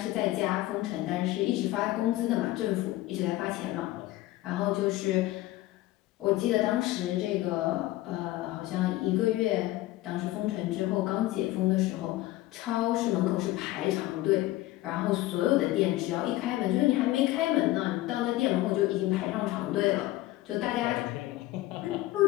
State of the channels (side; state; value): right; quieter; 16.8 dB